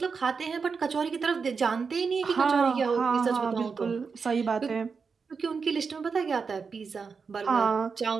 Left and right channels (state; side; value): quieter; left; 5.3 dB